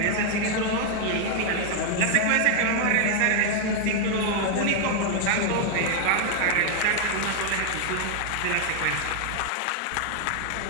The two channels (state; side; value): different; both; correlation 0.00